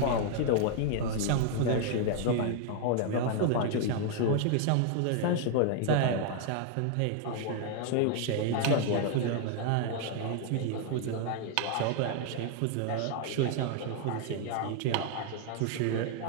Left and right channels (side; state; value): both; different; correlation 0.00